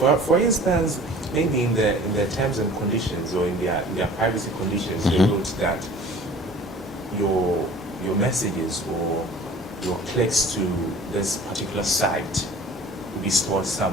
for instance, maybe in their terms and conditions or in their privacy conditions, they wrote that your messages or your clicks to this particular site will be stored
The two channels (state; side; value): normal; both; correlation 0.46